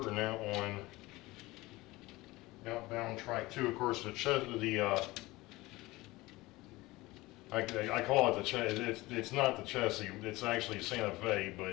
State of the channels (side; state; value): right; quieter; 20.2 dB